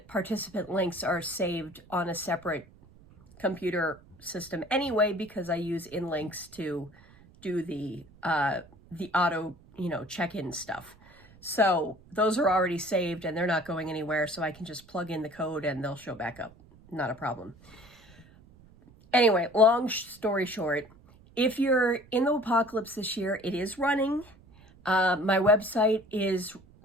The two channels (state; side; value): noise; right; rumble, 25 dB below the sound